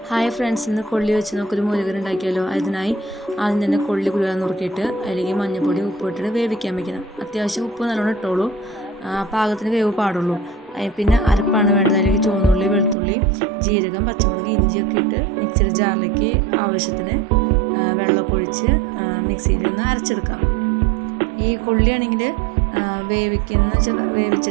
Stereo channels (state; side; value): drops out; left; at 13.0 s